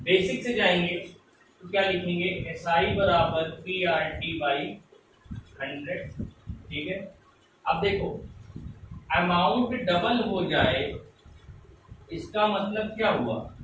बेसिक से जाएंगे तो क्या लिखेंगे? SI बराबर PRT बाई 100। ठीक है, अब देखो अमाउंट डबल हो जाए, इसका मतलब क्या हुआ?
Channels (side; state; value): both; identical; correlation 1.00